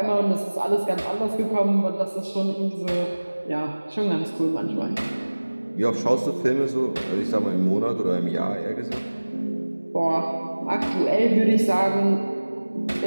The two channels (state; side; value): inverted; both; correlation -1.00